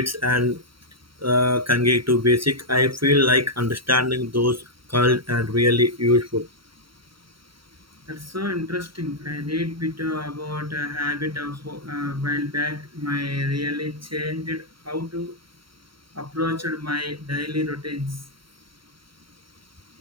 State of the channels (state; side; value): late; left; 0.74 ms